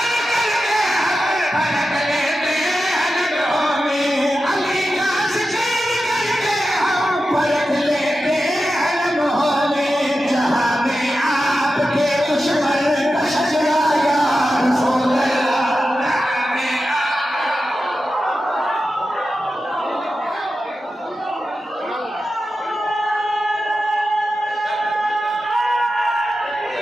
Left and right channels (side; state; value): both; normal; correlation 0.91